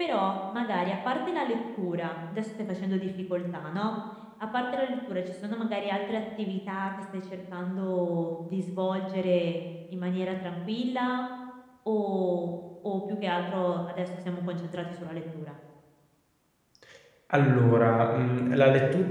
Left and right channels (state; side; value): identical; both; correlation 1.00